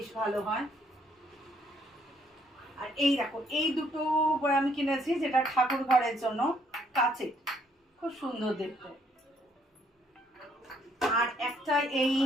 ভালো হয়। আর এই দেখো, এই দুটো আমি কিনেছি যেটা ঠাকুর ঘরের জন্য, কাচের, খুব সুন্দর দেখতে। আর একটা এই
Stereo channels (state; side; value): normal; both; correlation 0.68